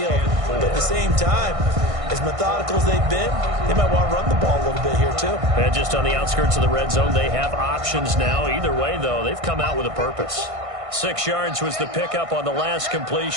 But at the same time, as methodical as they've been, they might want to run the ball a little bit here too. And just on the outskirts of the red zone, they have options now. Either way, though, they've come out with a purpose. 6 yards was the pickup on the last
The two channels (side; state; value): left; late; 1.6 ms